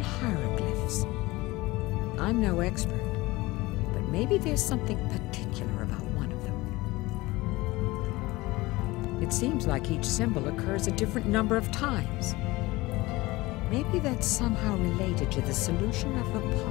hieroglyphs. I'm no expert, but maybe there's something particular about one of them. It seems like each symbol occurs a different number of times. Maybe that's somehow related to the solution of the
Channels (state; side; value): quieter; right; 20.6 dB